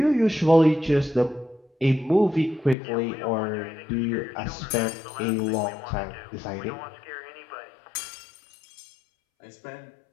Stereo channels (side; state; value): right; drops out; at 2.8 s